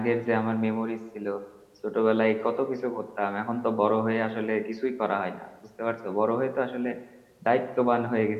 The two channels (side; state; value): both; identical; correlation 1.00